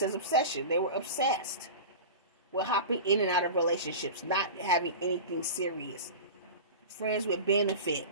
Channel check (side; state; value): both; inverted; correlation -0.30